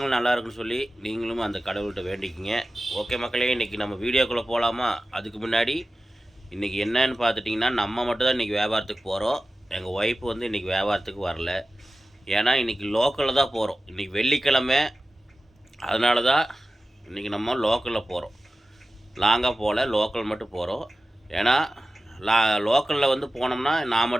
நல்லா இருக்குன்னு சொல்லி நீங்களும் அந்த கடவுள்கிட்ட வேண்டிக்கிங்க. ஓகே மக்களே, இன்றைக்கி நம்ம வீடியோக்குள்ளே போகலாமா? அதுக்கு முன்னாடி இன்றைக்கி என்னன்னு பார்த்துட்டிங்கன்னா, நம்ம மட்டும் தான் இன்றைக்கி வியாபாரத்துக்கு போகிறோம். எங்கள் ஒய்ஃப் வந்து இன்றைக்கி வியாபாரத்துக்கு வரல. ஏன்னா இன்றைக்கி லோக்கலில் தான் போகிறோம். இன்றைக்கி வெள்ளிக்கிழமை, அதனால தான் இன்றைக்கி நம்ம லோக்கலில் போகிறோம். லாங்காக போகல, லோக்கல் மட்டும் போகிறோம். ஏன்னா லோக்கலில் வந்து போனோம்னா நான்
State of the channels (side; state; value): both; normal; correlation 0.95